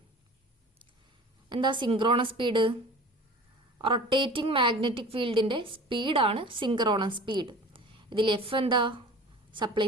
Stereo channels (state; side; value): normal; both; correlation 0.42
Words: എന്താ synchronous speed? Rotating magnetic ഫീൽഡിന്റെ സ്പീഡാണ് synchronous speed. ഇതിൽ F എന്താ? Supply